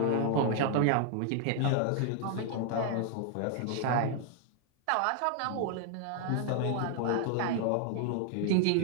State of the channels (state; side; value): different; both; correlation 0.00